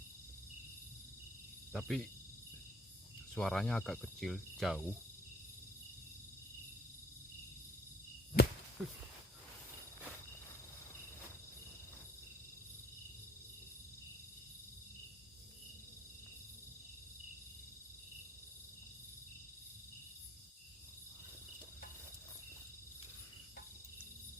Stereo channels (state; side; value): normal; both; correlation 0.59